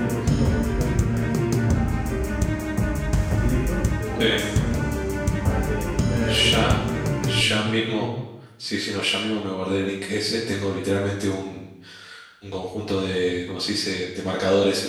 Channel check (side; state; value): both; identical; correlation 1.00